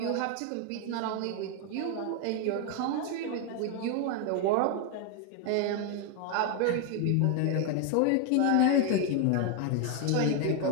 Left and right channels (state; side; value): different; both; correlation 0.01